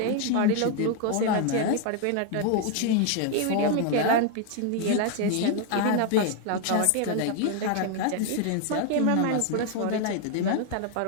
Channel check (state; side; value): different; both; correlation 0.00